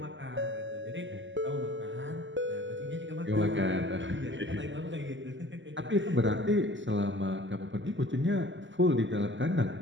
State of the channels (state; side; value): late; left; 0.54 ms